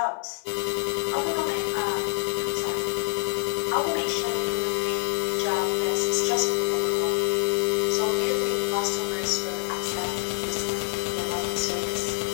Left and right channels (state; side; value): silent; right; digital silence